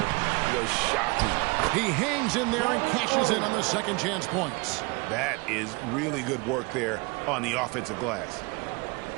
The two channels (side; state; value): left; quieter; 26.9 dB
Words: was shocking. He hangs in there and cashes in on the second chance points. That is really good work there on the offensive glass.